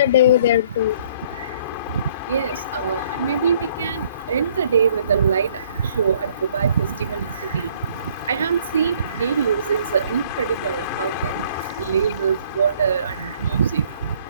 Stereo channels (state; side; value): inverted; both; correlation -0.61